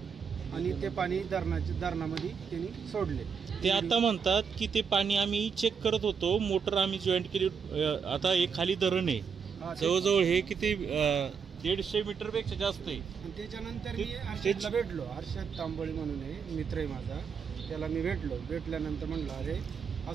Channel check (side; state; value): left; quieter; 6.3 dB